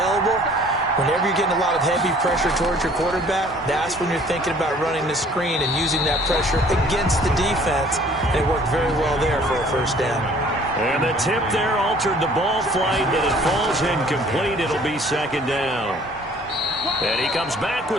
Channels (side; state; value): both; normal; correlation 0.54